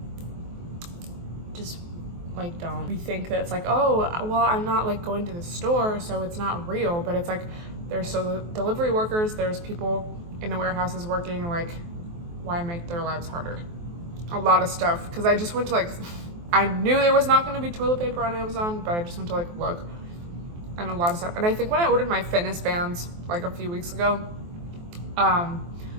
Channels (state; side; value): late; left; 23 ms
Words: just like don't. We think that it's like, oh, well, I'm not like going to the store, so it's not real, but it's like there's so delivery workers, there's people in the warehouses working, like why make their lives harder? A lot of stuff, because I just went to like, I knew there was not going to be toilet paper on Amazon, but I just went to like look, and a lot of stuff. And I think when I ordered my fitness bands like a few weeks ago,